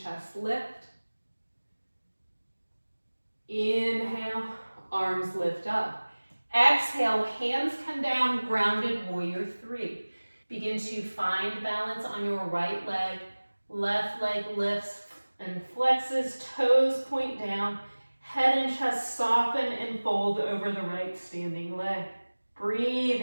lift. Inhale, arms lift up. Exhale, hands come down, grounded warrior 3. Begin to find balance on your right leg. Left leg lifts and flexes, toes point down. Head and chest soften and fold over the right standing leg.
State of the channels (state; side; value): inverted; both; correlation -1.00